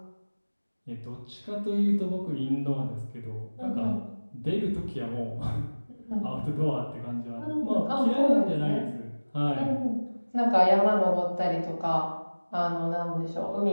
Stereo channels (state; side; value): inverted; both; correlation -1.00